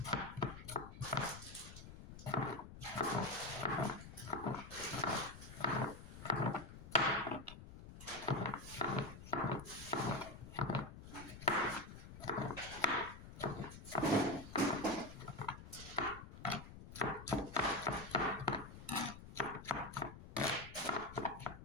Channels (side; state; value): left; noise; rumble, 14 dB below the sound